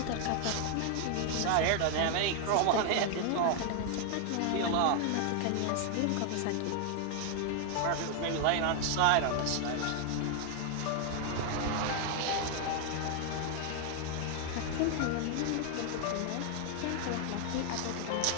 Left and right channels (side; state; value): both; different; correlation 0.00